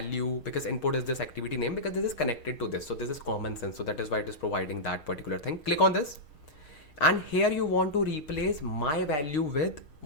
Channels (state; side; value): late; right; 6.5 ms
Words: because input is this activity name, because this is connected to this. So this is common sense. So that is why it is providing that particular thing. Click on this. And here you want to replace my value with